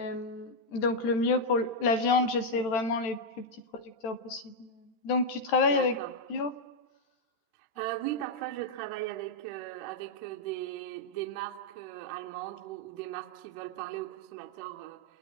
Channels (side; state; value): right; late; 13 ms